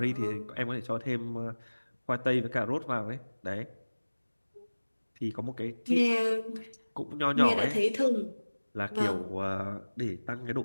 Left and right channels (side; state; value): both; inverted; correlation -1.00